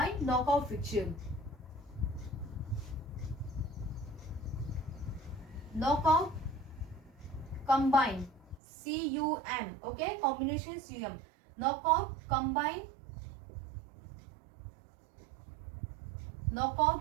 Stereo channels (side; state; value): left; drops out; at 8.6 s